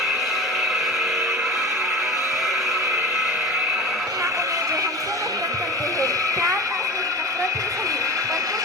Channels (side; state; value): both; normal; correlation 0.34